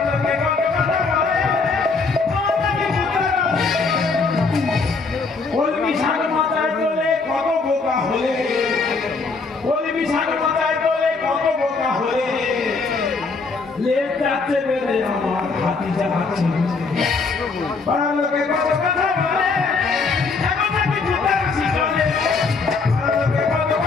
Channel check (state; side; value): quieter; right; 4.3 dB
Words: কত কথা বলে আমার নাকি কুতা কলমি শাক মাথায় তোলে কত বোকা হলে কলমি শাক মাথায় তোলে কত বোকা হলে লেট যাচ্ছে বেড়ে আমার হাতি যাচ্ছে পারলে কত কথা বলে এখন নাকি কুতা রাশি চলে পারলে কত